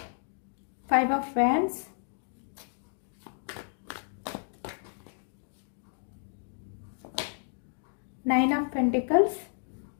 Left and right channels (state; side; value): silent; right; digital silence